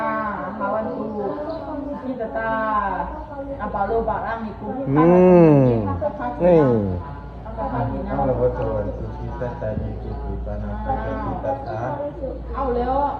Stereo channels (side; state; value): both; identical; correlation 1.00